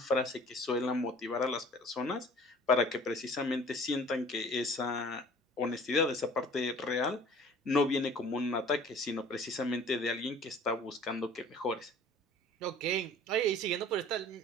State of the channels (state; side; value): normal; both; correlation 0.49